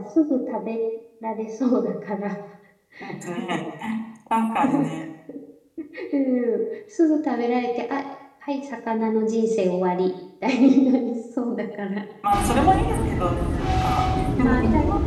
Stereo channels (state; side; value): identical; both; correlation 1.00